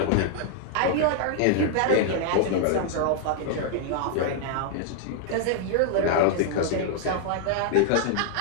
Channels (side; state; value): both; different; correlation 0.00